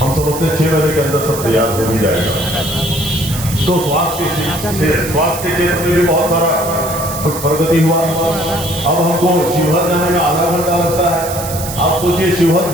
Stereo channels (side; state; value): right; noise; hiss, 9 dB below the sound